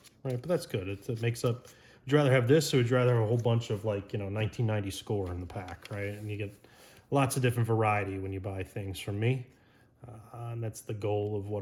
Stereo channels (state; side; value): identical; both; correlation 1.00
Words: Right, but that's good. It makes up. Would you rather have this, or would you rather have a whole bunch of 1990 score in the pack, right? And you get lots of different variety when you buy things from me, and that's the goal of